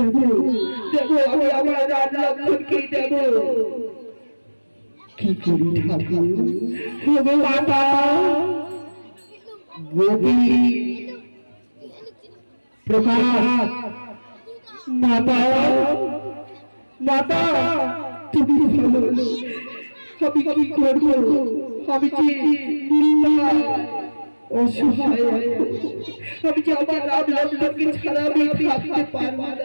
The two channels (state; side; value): inverted; both; correlation -1.00